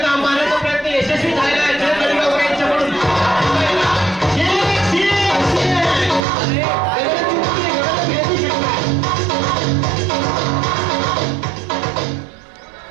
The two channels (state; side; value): drops out; left; at 6.2 s